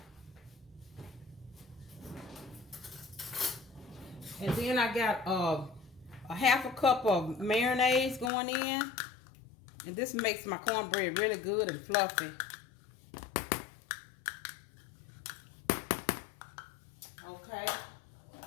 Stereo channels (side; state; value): right; drops out; at 8.3 s